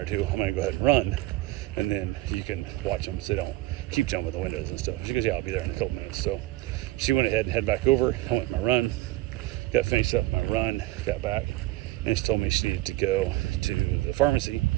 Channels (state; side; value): quieter; left; 17.9 dB